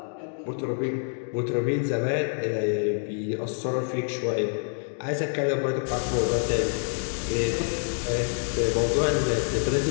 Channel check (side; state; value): right; silent; 57 dB below the other